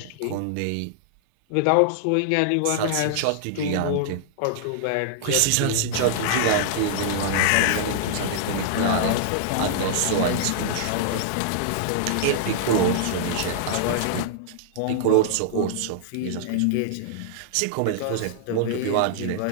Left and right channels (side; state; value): both; different; correlation -0.01